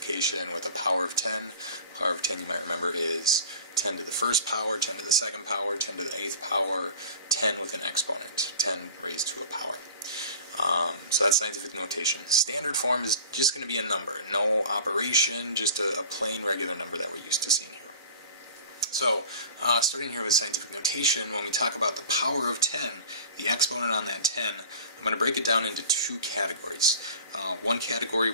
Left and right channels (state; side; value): inverted; both; correlation -0.39